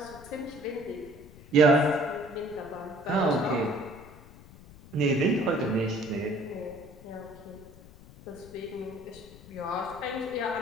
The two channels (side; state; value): left; noise; rumble, 20 dB below the sound